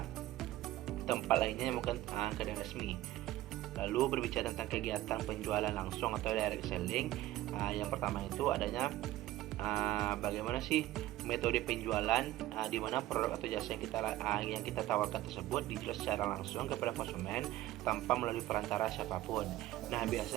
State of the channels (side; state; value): left; quieter; 15.6 dB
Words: yang bukan kedai resmi. Lalu berbicara tentang kegiatan penjualan langsung atau direct selling. Yang pertama itu adanya bagaimana sih metode penjualan di mana produk atau jasa yang kita tawarkan tersebut dijual secara langsung kepada konsumen tanpa melalui perantara siapapun. Nah,